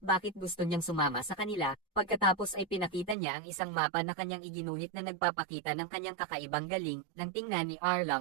bakit gusto niyang sumama sa kanila. Pagkatapos ay pinakita niya ang isang mapa na kanyang iginuhit na nagpapakita ng kanyang kakaibang galing. Nang tingnan ni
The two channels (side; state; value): left; drops out; at 3.2 s